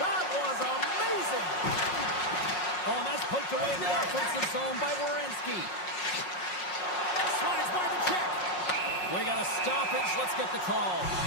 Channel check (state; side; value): late; right; 5.5 ms